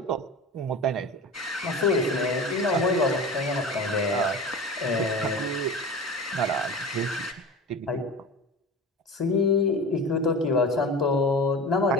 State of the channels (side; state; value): both; normal; correlation 0.32